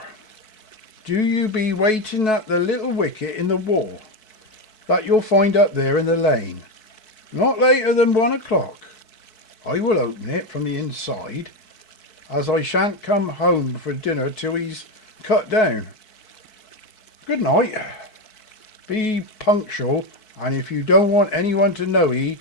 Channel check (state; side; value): late; right; 4.6 ms